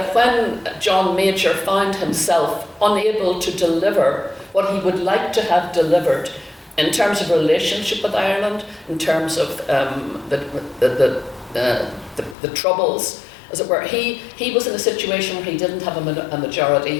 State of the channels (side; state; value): right; drops out; at 12.4 s